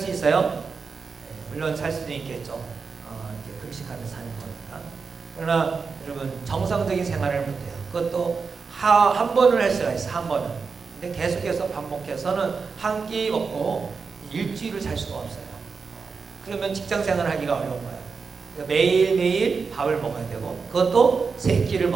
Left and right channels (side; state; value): left; quieter; 5.1 dB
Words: 있어요? 물론 살 수도 있겠죠. 이렇게 금식하면서 사는 거니까. 그러나 여러분, 정상적인 생활을 못해요. 그것도 한 번을 할 수가 있어, 한 번은. 근데 계속해서 반복해서는 한 끼 먹고 일주일을 살 수가 없어요. 그러면 직장 생활을 하기가 어려운 거예요. 그러니까 매일매일 밥을 먹어야 되고, 그것도 세 끼를